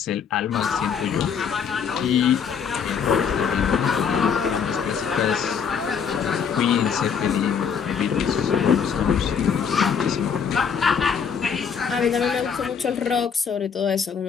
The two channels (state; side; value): quieter; right; 6.9 dB